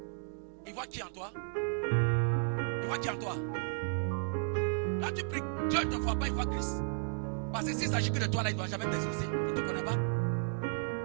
Il voit qui en toi? Il voit qui en toi? Quand tu pries, Dieu ne te voit pas, il voit Christ. Parce que s'il s'agit que de toi, là, il ne doit jamais t'exaucer. Il ne te connaît pas.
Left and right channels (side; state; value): left; silent; 55 dB below the other